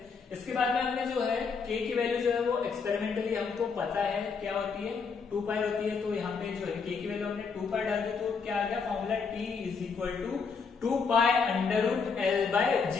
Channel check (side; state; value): right; quieter; 5.4 dB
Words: इसके बाद में हमने जो है k की वैल्यू जो है वो एक्सपेरिमेंटली हमको पता है क्या होती है 2 पाई होती है, तो यहाँ पे जो है k की वैल्यू हमने 2 पाई डाल दी, तो क्या आ गया formula t is equal to 2 pi under root l by